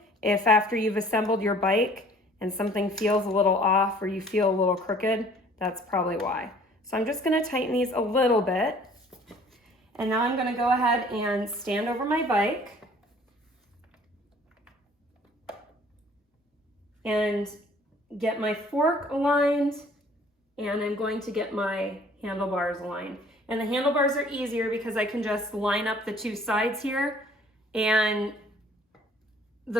if after you've assembled your bike and something feels a little off or you feel a little crooked, that's probably why. So I'm just gonna tighten these a little bit. And now I'm gonna go ahead and stand over my bike and get my fork aligned, and I'm going to get my handlebars aligned. And the handlebars are easier because I can just line up the two sides here, and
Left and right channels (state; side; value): normal; both; correlation 0.54